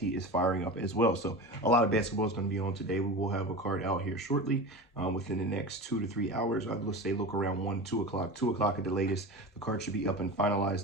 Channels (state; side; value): normal; both; correlation 0.29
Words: is firing up as well. So a lot of basketball is going to be on today. We will have a card out here shortly within the next 2 to 3 hours. I'd say look around 1, 2 o'clock, 2 o'clock at the latest. The card should be up and